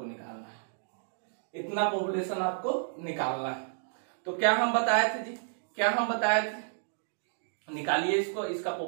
निकालना है। इतना पॉपुलेशन आपको निकालना है। तो क्या हम बताए थे जी, क्या हम बताए थे, निकालिए इसको, इसका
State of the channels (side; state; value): left; silent; digital silence